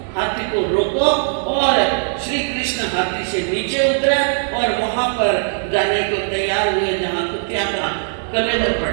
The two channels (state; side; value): silent; left; digital silence